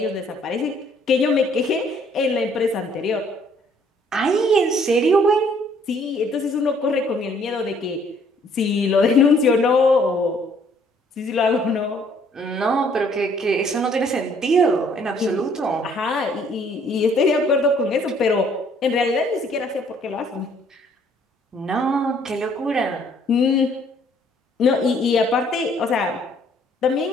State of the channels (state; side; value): normal; both; correlation 0.62